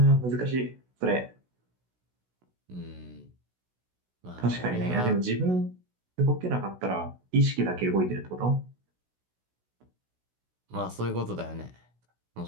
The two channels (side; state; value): left; late; 16 ms